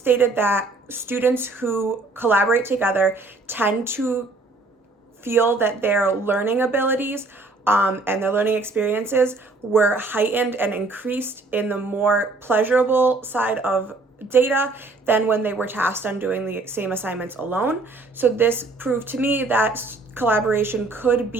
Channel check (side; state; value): left; quieter; 3.3 dB